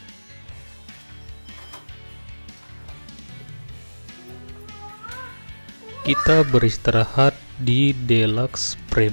Kita beristirahat di Deluxe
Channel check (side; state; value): both; inverted; correlation -1.00